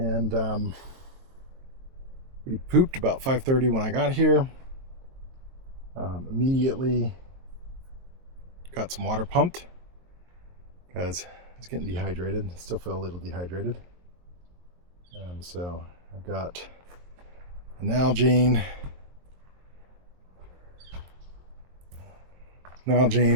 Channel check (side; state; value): left; late; 23 ms